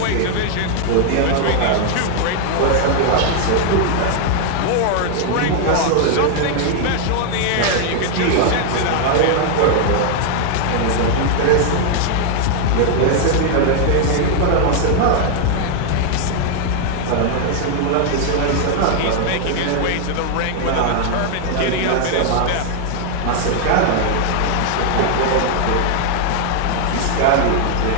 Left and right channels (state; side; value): different; both; correlation 0.00